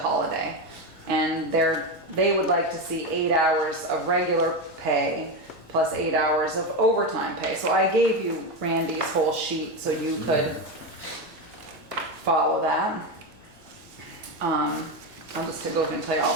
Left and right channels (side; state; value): both; normal; correlation 0.14